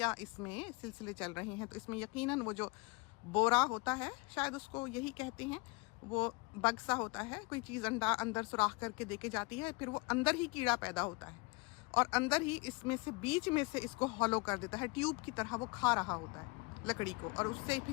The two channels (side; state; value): right; quieter; 26.6 dB